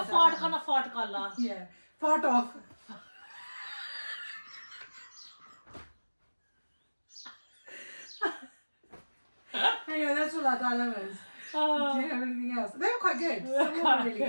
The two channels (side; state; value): both; inverted; correlation -1.00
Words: fart kana fart kalla. Yeah. Fart off. Anyway, that's all our dilemmas. Do you have anything else? They were quite good. Some of them were really